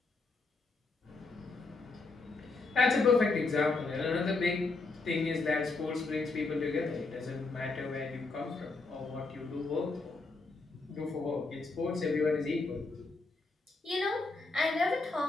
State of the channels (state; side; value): quieter; right; 3.7 dB